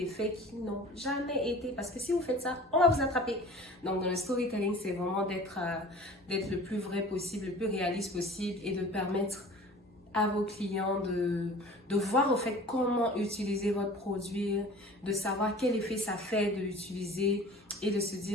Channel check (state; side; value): normal; both; correlation 0.43